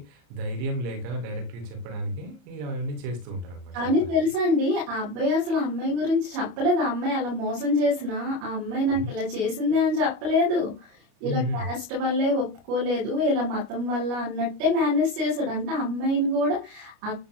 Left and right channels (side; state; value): left; late; 34 ms